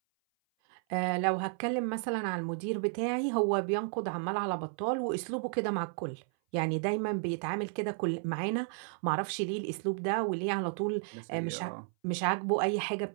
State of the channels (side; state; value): left; silent; 56 dB below the other